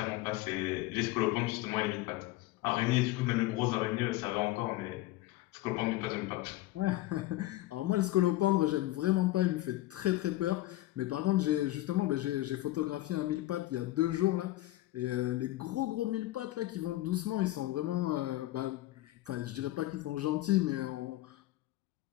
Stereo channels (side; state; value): right; quieter; 16.8 dB